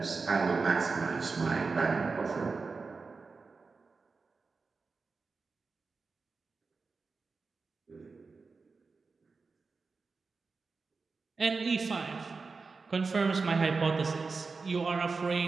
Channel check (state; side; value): quieter; left; 4.4 dB